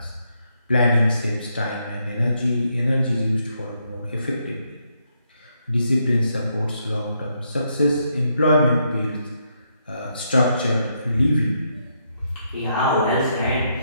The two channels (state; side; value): inverted; both; correlation -0.77